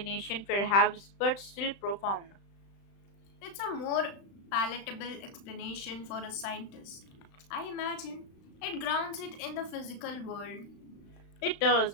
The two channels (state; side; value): late; right; 35 ms